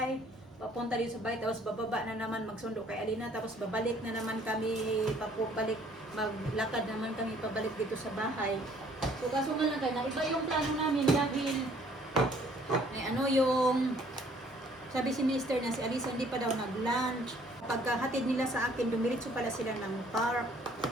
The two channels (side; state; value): both; normal; correlation 0.60